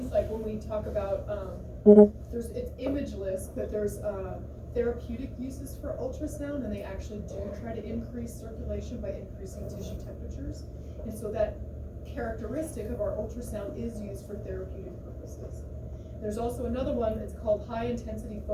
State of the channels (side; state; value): both; identical; correlation 1.00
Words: like when we talk about, it's imageless, but there's therapeutic uses for ultrasound, and they actually do try to increase circulation by increasing tissue temperatures. And so that characteristic of our ultrasound is used for therapeutic purposes. There's also another one, it's called high intensity